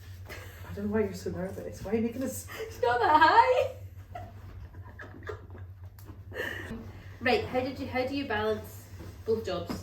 I don't know why you're so nervous. Why are you making this? It's not that high. Right. How do you balance both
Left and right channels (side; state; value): both; identical; correlation 1.00